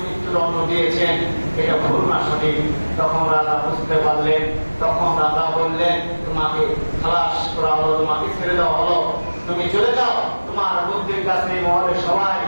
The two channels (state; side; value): inverted; both; correlation -1.00